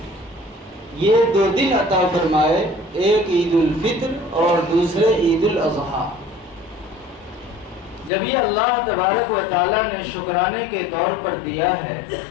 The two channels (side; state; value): right; drops out; at 8.1 s